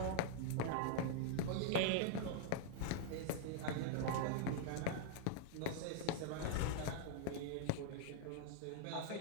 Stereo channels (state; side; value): different; both; correlation -0.01